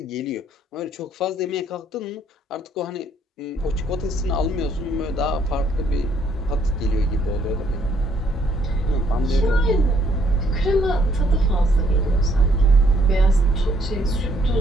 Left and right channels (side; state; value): both; normal; correlation 0.67